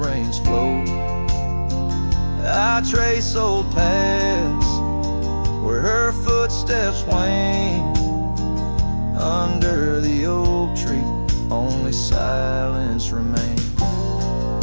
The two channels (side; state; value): both; inverted; correlation -1.00